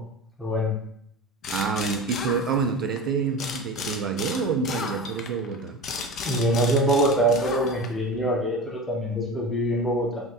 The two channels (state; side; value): normal; both; correlation 0.30